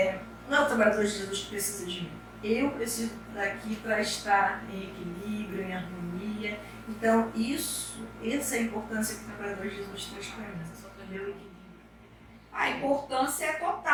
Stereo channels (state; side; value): identical; both; correlation 1.00